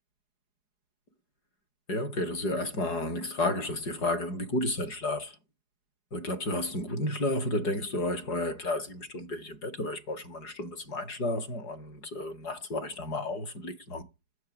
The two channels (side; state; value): right; late; 4.8 ms